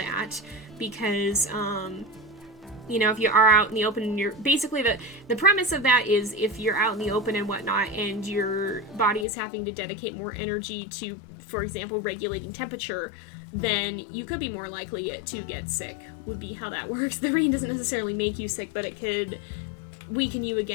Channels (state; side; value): drops out; right; at 9.2 s